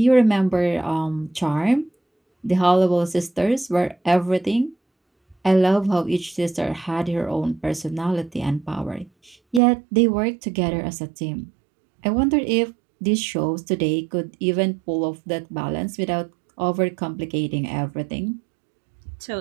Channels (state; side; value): drops out; left; at 9.6 s